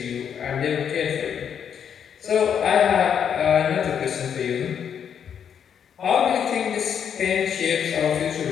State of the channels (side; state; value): right; quieter; 8.1 dB